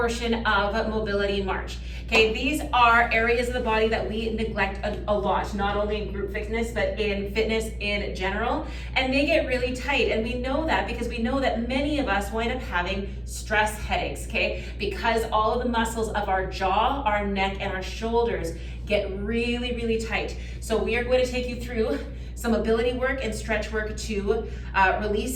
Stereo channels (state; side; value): identical; both; correlation 1.00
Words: of Mobility March. Okay, these are areas of the body that we neglect a lot, not only in group fitness, but in fitness in general. And they get really tight. And we know that because we know that many of us wind up having stress headaches, okay? Because all of the muscles of our jaw, our neck, and our shoulders get really, really tight. So we are going to take you through some mobility work and stretch work to